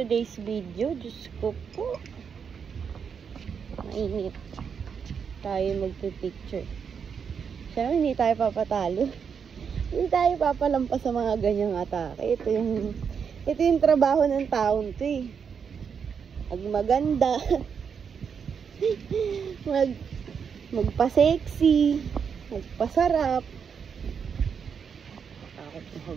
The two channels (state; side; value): quieter; left; 6.7 dB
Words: video? Diyos ko po. Mainit. Tayo magpipicture. Siyempre, hindi tayo papatalo. Hindi tayo papalampas sa mga ganyang atake. Ito yung trabaho ng taon to eh. Maganda. Magpa-sexy, magpasarap. Takot na